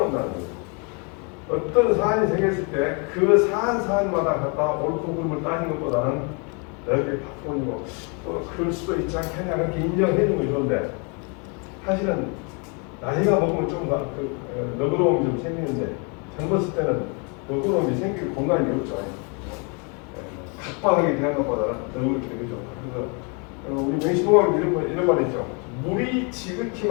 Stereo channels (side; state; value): right; quieter; 34.9 dB